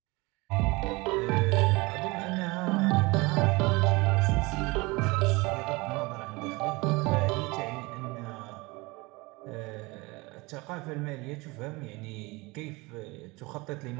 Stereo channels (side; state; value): left; quieter; 24.2 dB